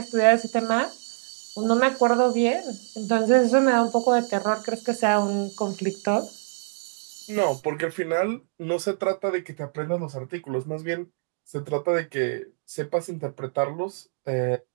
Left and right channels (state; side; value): silent; left; digital silence